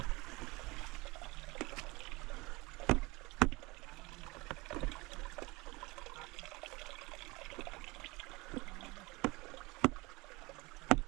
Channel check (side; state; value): left; quieter; 23.5 dB